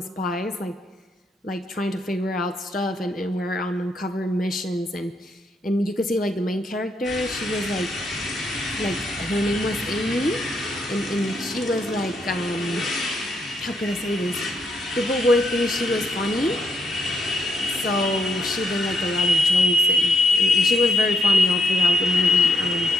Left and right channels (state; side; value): normal; both; correlation 0.77